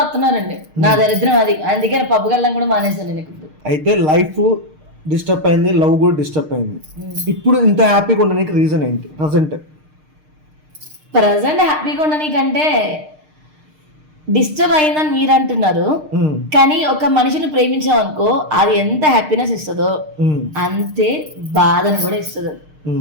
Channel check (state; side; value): late; left; 6.5 ms